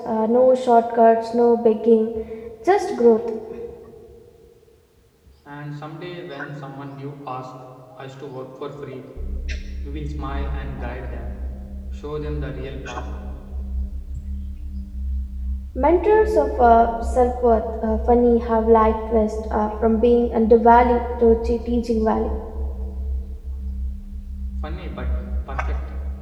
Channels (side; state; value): both; identical; correlation 1.00